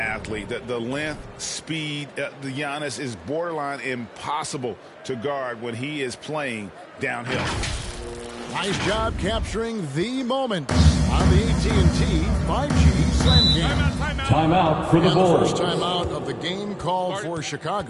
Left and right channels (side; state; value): both; identical; correlation 1.00